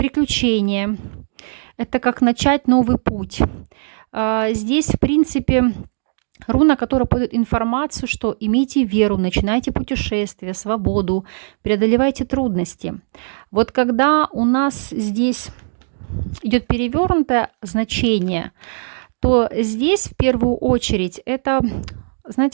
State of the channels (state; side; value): silent; left; digital silence